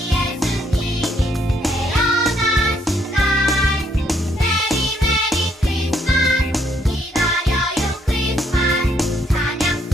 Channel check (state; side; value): normal; both; correlation 0.70